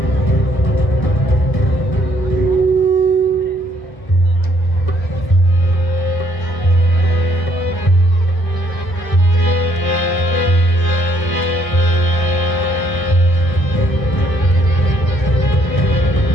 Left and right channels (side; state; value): right; late; 1.1 ms